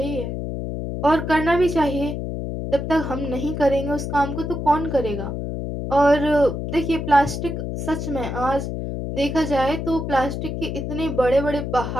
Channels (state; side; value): noise; left; hum, 4 dB below the sound